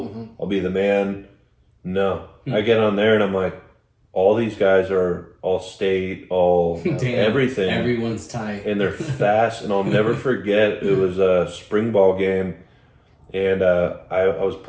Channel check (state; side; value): identical; both; correlation 1.00